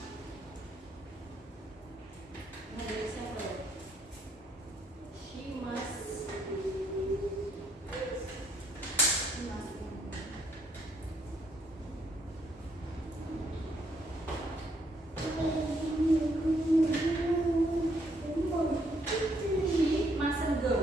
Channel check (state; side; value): normal; both; correlation 0.71